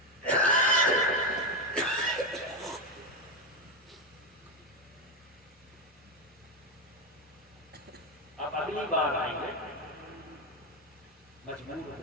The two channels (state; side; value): normal; both; correlation 0.10